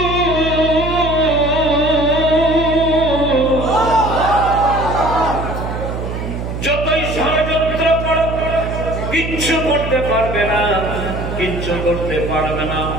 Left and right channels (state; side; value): noise; right; hum, 5 dB below the sound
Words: কিচ্ছু করতে পারবে না।